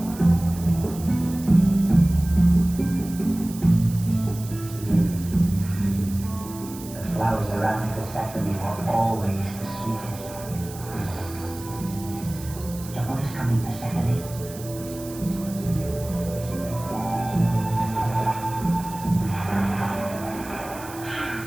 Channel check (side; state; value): right; noise; hiss, 16 dB below the sound